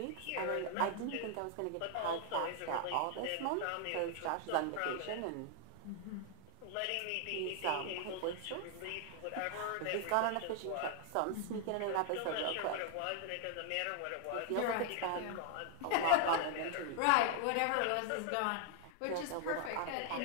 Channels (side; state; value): both; different; correlation 0.00